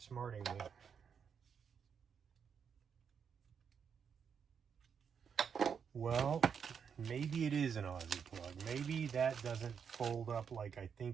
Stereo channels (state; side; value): quieter; left; 6.9 dB